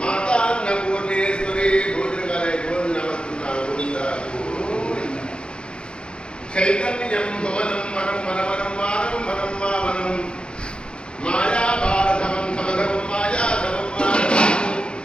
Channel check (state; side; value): late; right; 0.054 ms